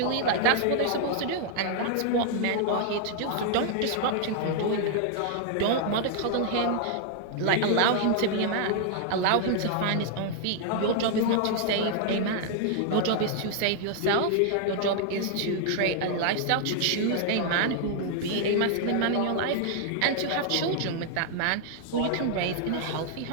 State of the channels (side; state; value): both; different; correlation 0.00